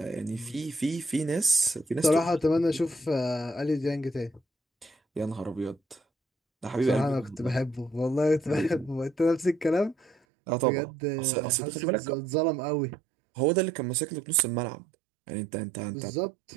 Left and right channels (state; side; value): drops out; left; at 10.2 s